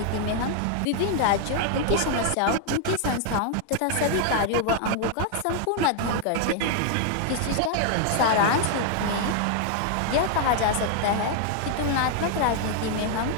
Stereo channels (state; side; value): different; both; correlation 0.00